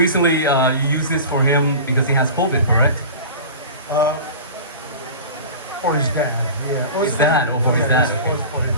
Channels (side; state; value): both; inverted; correlation -0.35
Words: you used this for him because he has COVID, correct? For his dad, yeah. His dad, or for his dad? For his